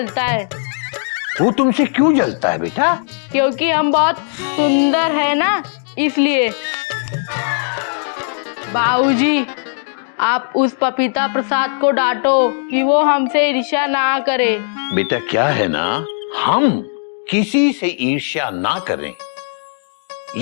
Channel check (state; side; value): silent; right; digital silence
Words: है। वो तुमसे क्यों जलता है बेटा? क्योंकि हम बहुत सुंदर है ना, इसलिए। बाबूजी, आप उस पपीता प्रसाद को डांटो कि वो हमसे ईर्ष्या ना करे। बेटा, क्या है ना, हम किसी से ईर्ष्या ना करें,